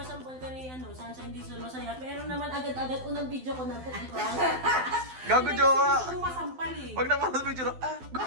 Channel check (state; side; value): late; left; 12 ms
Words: ka ni Sunshine Diesel, masaya. Pero naman agad-agad unang video ko na po. Gago, jowa. Gusto mo masampal eh. Huwag naman sa picture.